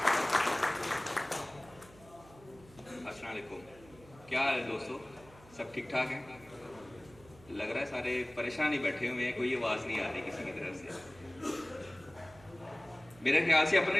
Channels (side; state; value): right; noise; hum, 23 dB below the sound